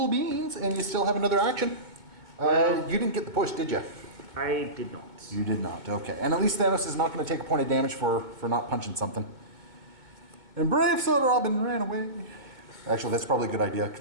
beans, and you still have another action. You didn't get the push, did you? I did not. You did not, okay. And at least Thanos is not going to take a point of damage for not punching something. And Brave Soda Robin ran away. Actually, that's probably a good idea.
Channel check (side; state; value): left; late; 2.1 ms